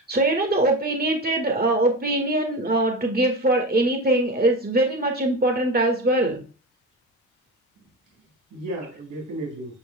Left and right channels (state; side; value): normal; both; correlation 0.24